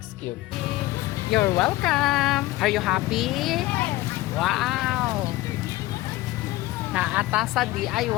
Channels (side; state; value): right; quieter; 17.8 dB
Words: Cube. You're welcome. Are you happy? Wow. Naata sa